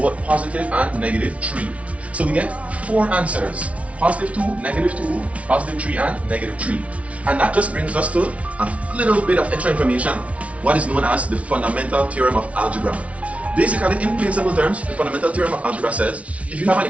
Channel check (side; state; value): left; late; 0.064 ms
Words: positive and negative 3. So we get 4 answers. Positive 2, negative 2, positive 3, and negative 3. And that just brings us to a little bit of extra information, what is known as the fundamental theorem of algebra. Basically, in plain simple terms, the fundamental theorem of algebra says if you have an